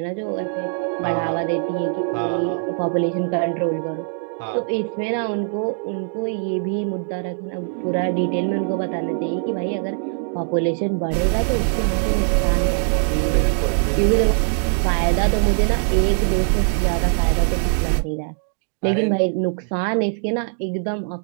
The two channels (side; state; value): left; silent; 64 dB below the other